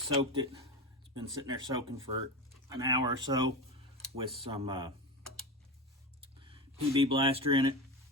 it. It's been sitting there soaking for an hour or so with some PB blaster in it,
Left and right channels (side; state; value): both; normal; correlation 0.22